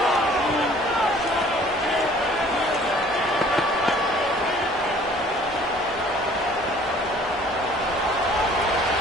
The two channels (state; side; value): normal; both; correlation 0.53